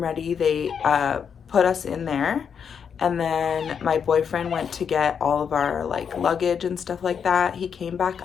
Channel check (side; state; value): right; quieter; 7.1 dB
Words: ready. They put us in there, and then my boyfriend went to get all of our like luggage and stuff like that. He came back